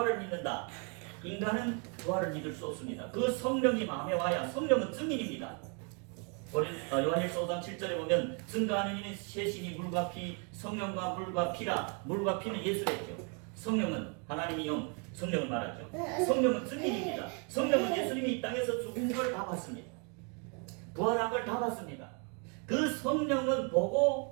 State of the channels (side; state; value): left; quieter; 36.8 dB